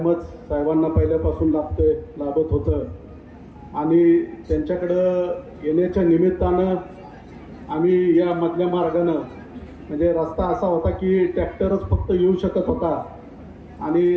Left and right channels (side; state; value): both; identical; correlation 1.00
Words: साहेबांना पहिल्यापासून लाभत होतं आणि त्यांच्याकडं येण्याच्या निमित्तानं आम्ही या मधल्या मार्गानं, म्हणजे रस्ता असा होता की ट्रॅक्टरच फक्त येऊ शकत होता